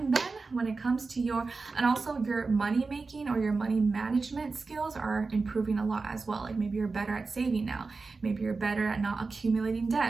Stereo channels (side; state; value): left; quieter; 4.1 dB